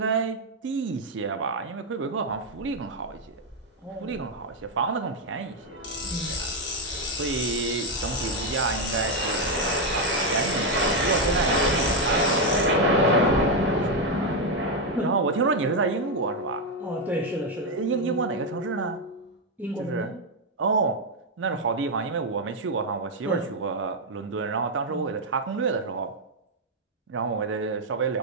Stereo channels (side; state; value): both; normal; correlation 0.03